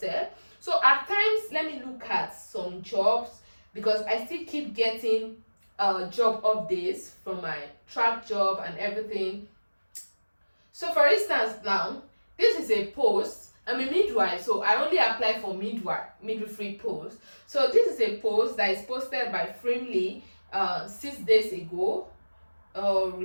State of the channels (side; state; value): both; inverted; correlation -1.00